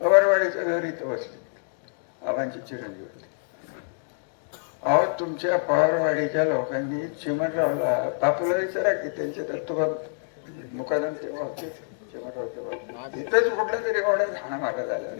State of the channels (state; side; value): silent; right; digital silence